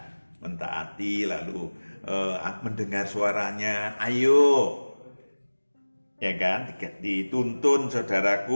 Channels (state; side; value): inverted; both; correlation -1.00